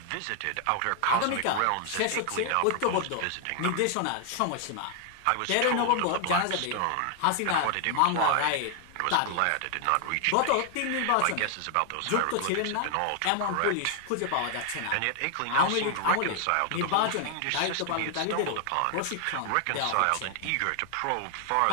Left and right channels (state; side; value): different; both; correlation 0.00